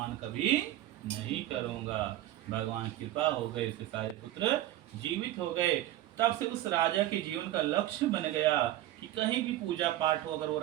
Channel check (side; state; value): left; quieter; 14.1 dB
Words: कभी नहीं करूंगा। भगवान कृपा हो गई, इसके सारे पुत्र जीवित हो गए। तब से उस राजा के जीवन का लक्ष्य बन गया कि कहीं भी पूजा पाठ हो, अगर वो